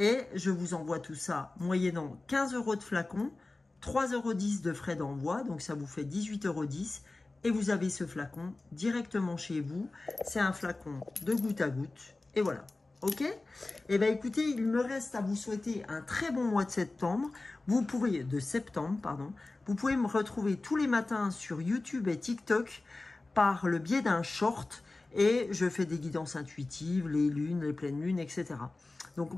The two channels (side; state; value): right; quieter; 3.2 dB